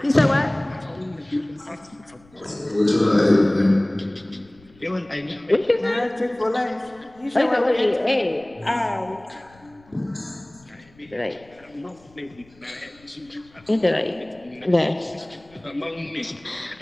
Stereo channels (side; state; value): left; noise; rumble, 28 dB below the sound